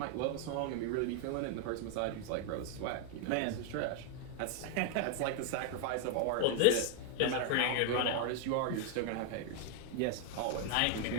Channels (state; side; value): different; both; correlation 0.00